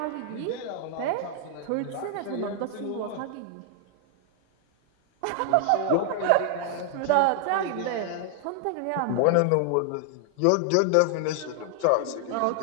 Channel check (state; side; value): different; both; correlation 0.00